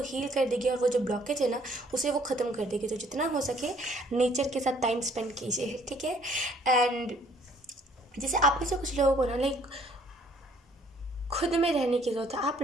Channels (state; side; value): normal; both; correlation 0.60